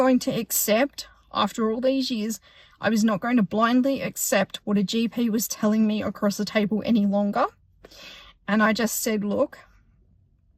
to accept, after all these years, I was not going to blindly accept what a GP was telling me across the table any longer. And I just said, look,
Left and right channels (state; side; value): identical; both; correlation 1.00